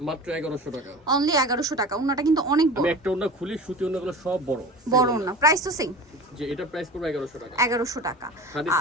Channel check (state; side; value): normal; both; correlation 0.35